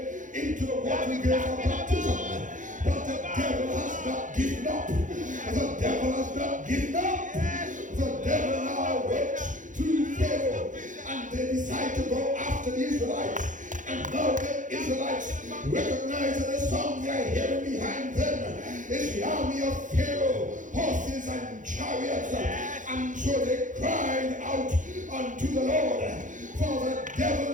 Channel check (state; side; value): late; left; 0.37 ms